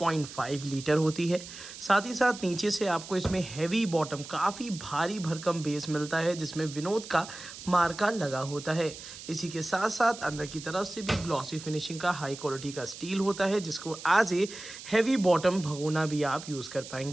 लीटर होती है। साथ ही साथ नीचे से आपको इसमें हैवी बॉटम, काफ़ी भारी भरकम बेस मिलता है जिसमें विनोद का मार्का लगा होता है। इसी के साथ साथ अंदर की तरफ से भी ग्लॉसी फिनिशिंग का हाई क्वालिटी का स्टील होता है जिसको एज ए हैवी बॉटम भगोना भी आप यूज़ कर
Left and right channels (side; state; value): right; noise; hiss, 13 dB below the sound